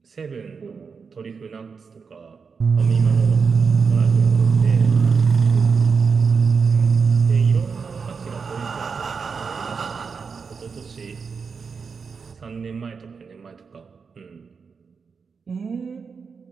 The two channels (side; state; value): left; quieter; 5.5 dB